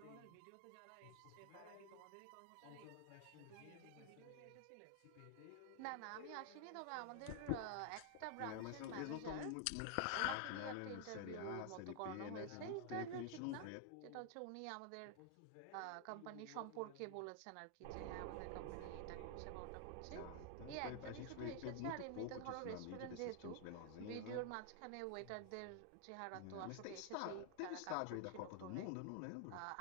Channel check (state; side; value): different; both; correlation 0.00